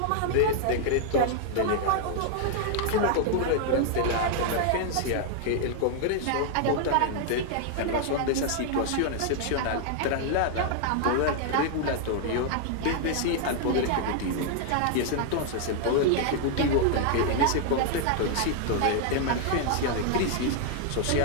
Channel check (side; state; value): both; different; correlation 0.00